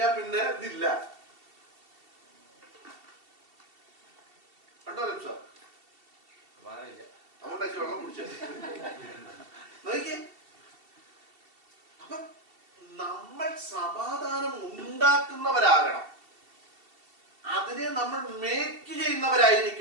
പിന്നെ ഇതില്ല. കണ്ടോ സാർ? അതുകൊണ്ട് വെള്ളം കുടിച്ചത് നോക്കി. അപ്പൊ നമ്മൾ സമാധാനം ഉണ്ടാക്കുന്നവരാകണം, അതിനെ നമ്മൾ മേക്ക്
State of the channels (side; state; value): left; late; 2.7 ms